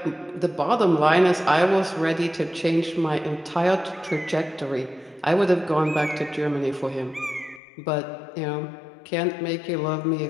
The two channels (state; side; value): drops out; right; at 7.6 s